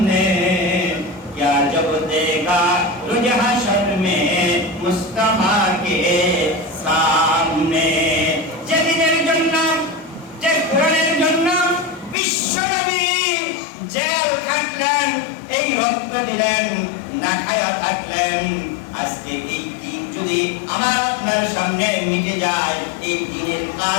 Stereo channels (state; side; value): drops out; right; at 12.2 s